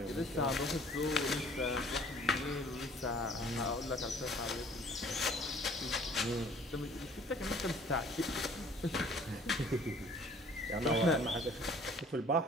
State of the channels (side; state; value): both; normal; correlation 0.54